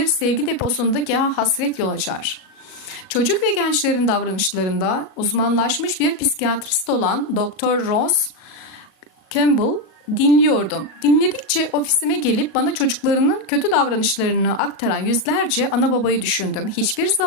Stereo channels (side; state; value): right; late; 37 ms